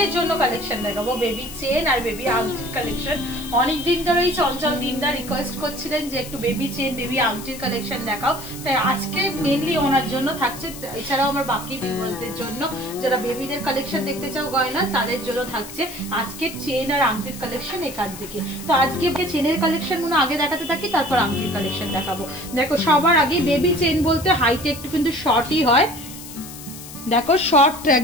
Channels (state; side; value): noise; left; hiss, 13 dB below the sound